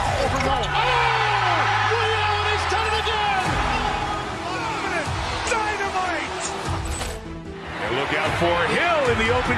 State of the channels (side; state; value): both; identical; correlation 1.00